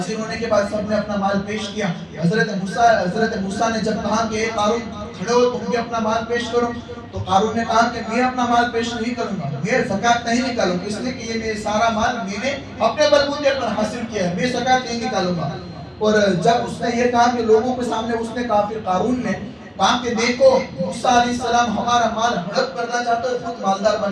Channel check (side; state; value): both; identical; correlation 1.00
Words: ہونے کے بعد سب نے اپنا مال پیش کیا۔ حضرت موسیٰ نے جب کہا کہ قارون کھڑے ہو، تم بھی اپنا مال پیش کرو، تو قارون نے کہا کہ میں اپنا مال پیش نہیں کروں گا، میں زکات نہیں نکالوں گا، اس لیے کہ یہ میرا سارا مال میں نے اپنے بلبوتے پر حاصل کیا ہے، میں زکات نہیں نکالوں گا۔ اور جب اس نے یہ کہا کہ لوگوں کے سامنے اس نے کہا، پھر قارون نے کہا کہ دیکھو موسیٰ علیہ السلام ہمارا مال ہڑپ کرنا چاہتے ہیں، خود مالدار